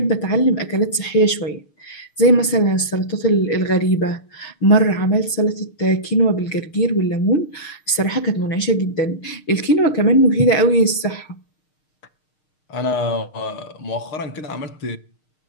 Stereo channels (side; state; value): right; late; 6.5 ms